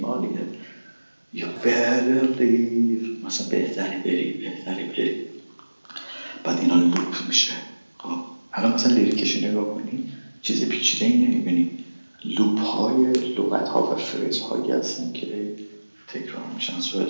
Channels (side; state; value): both; inverted; correlation -1.00